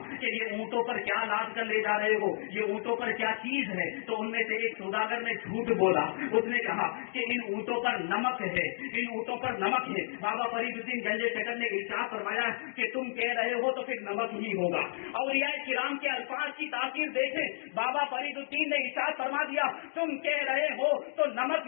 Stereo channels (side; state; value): right; silent; digital silence